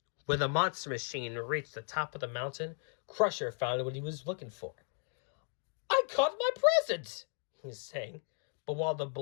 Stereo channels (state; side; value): silent; right; 54 dB below the other